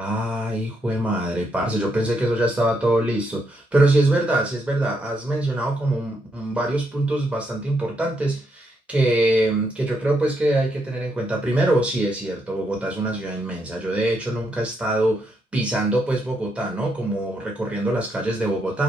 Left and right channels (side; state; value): both; normal; correlation 0.78